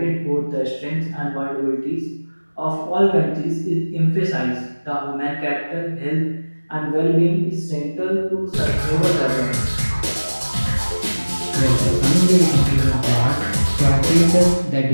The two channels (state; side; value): inverted; both; correlation -1.00